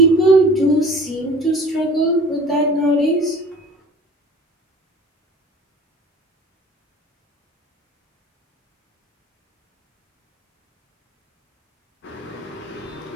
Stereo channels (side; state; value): both; normal; correlation 0.44